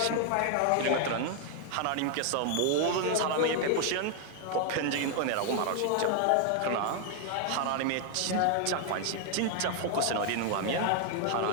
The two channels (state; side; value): different; both; correlation 0.00